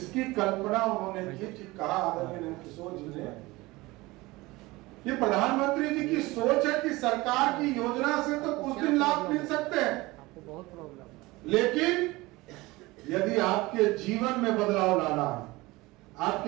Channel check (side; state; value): left; quieter; 21.1 dB